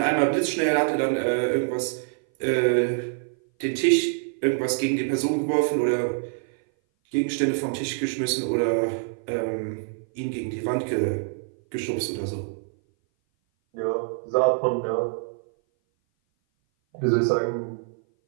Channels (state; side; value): silent; left; 58 dB below the other